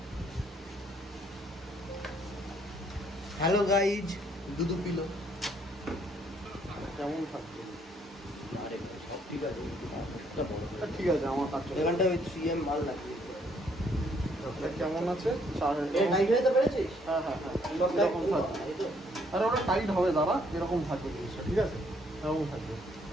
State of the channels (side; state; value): both; normal; correlation 0.67